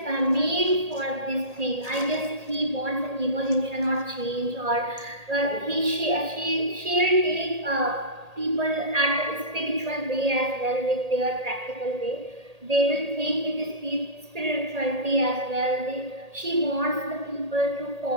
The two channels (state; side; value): late; left; 1.8 ms